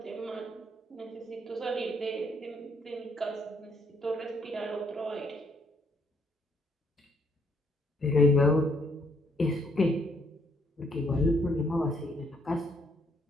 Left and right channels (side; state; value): both; normal; correlation 0.70